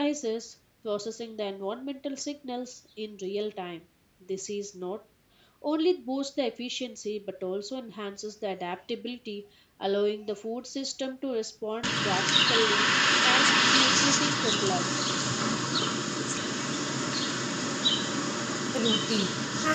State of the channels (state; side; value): identical; both; correlation 1.00